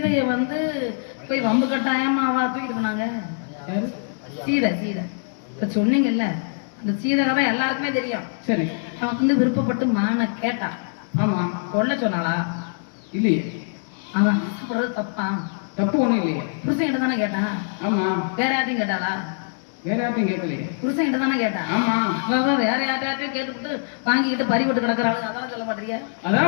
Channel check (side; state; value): right; silent; digital silence